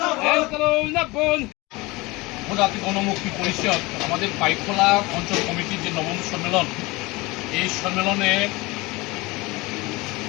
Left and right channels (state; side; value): quieter; right; 22.9 dB